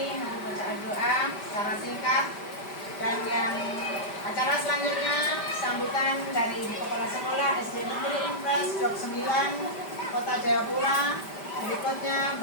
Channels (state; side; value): late; right; 5.1 ms